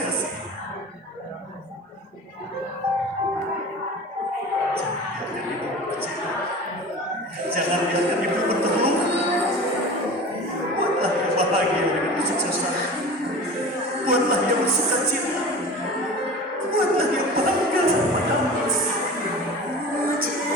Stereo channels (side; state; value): both; normal; correlation 0.36